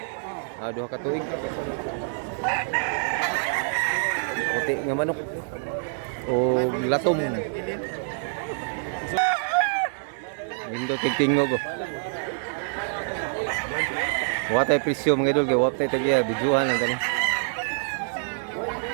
Duha katuig. Puti nga manok. O latom. Windo tingtingog ko. Watay presyo mga idol kay watay tagiya bijuhan lang tani.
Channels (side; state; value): left; silent; digital silence